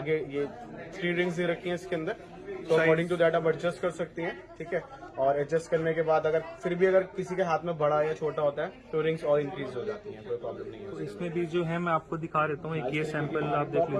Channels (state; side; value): identical; both; correlation 1.00